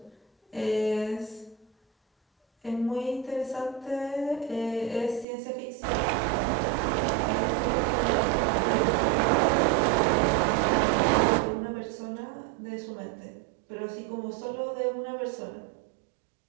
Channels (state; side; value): drops out; left; at 5.2 s